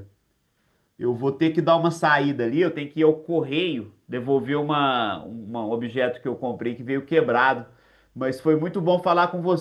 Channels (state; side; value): identical; both; correlation 1.00